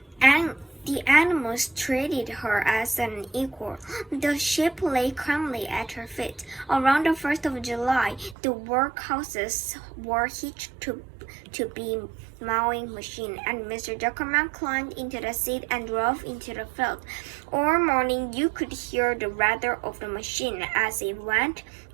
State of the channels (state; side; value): drops out; left; at 8.3 s